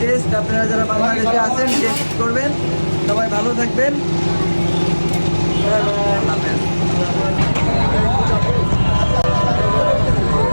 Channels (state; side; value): inverted; both; correlation -1.00